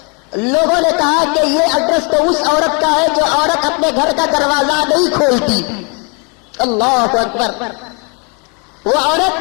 لوگوں نے کہا کہ یہ ایڈریس تو اس عورت کا ہے جو عورت اپنے گھر کا دروازہ نہیں کھولتی. اللہ اکبر. وہ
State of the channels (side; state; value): right; quieter; 33.7 dB